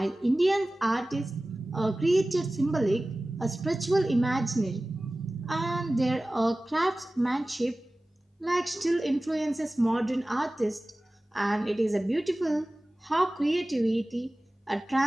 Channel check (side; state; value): both; normal; correlation 0.97